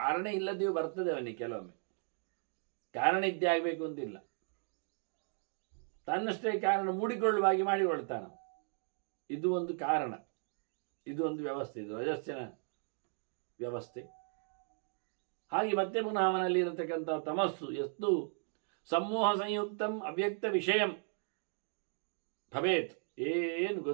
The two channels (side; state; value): left; silent; 54 dB below the other